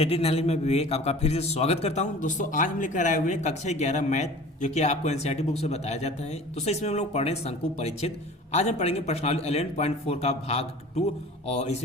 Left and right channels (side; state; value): both; normal; correlation 0.43